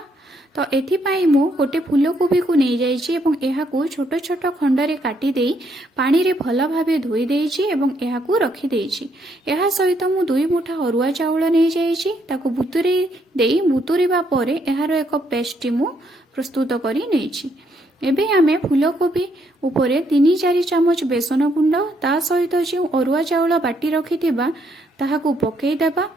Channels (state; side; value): normal; both; correlation 0.73